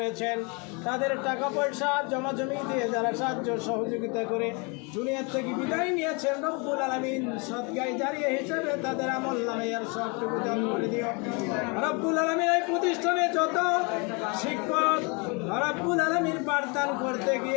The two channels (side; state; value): right; quieter; 31.8 dB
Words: তাদের টাকা পয়সা জমা জমি দিয়ে যারা সাহায্য সহযোগিতা করে দুনিয়ার থেকে বিদায় নিয়েছেন, রব্বুল আলামিন সদকায়ে জারিয়া হিসেবে তাদের আমল নামে আর সবটুকু দান করে দিও রব্বুল আলামিন। এই প্রতিষ্ঠানে যত শিক্ষক রব্বুল আলামিন পাঠদান করতে